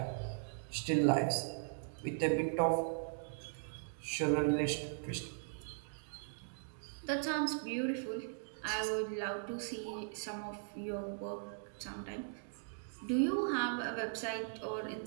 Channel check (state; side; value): silent; left; digital silence